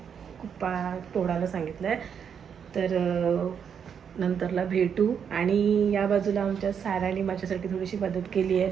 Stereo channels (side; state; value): left; quieter; 7.5 dB